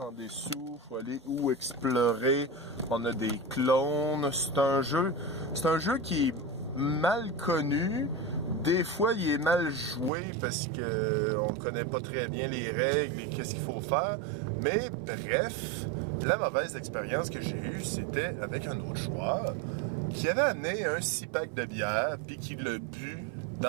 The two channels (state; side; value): drops out; left; at 10.1 s